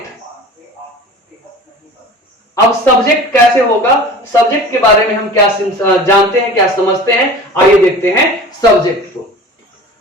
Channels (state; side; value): normal; both; correlation 0.39